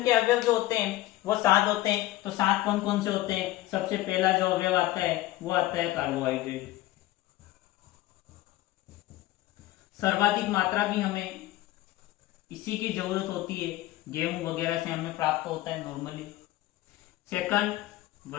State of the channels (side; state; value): right; quieter; 16.3 dB